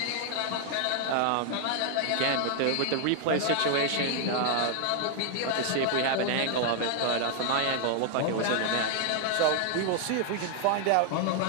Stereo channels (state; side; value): different; both; correlation 0.00